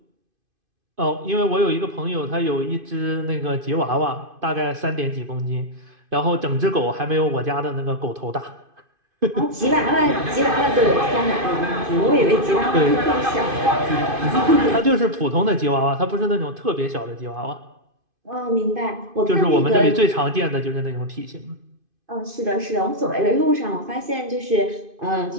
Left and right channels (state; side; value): late; left; 2.5 ms